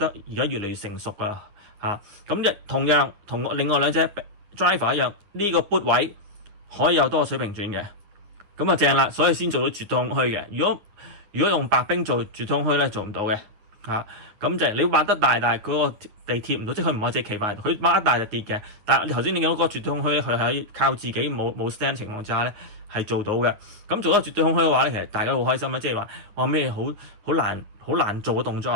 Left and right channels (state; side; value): late; left; 9.7 ms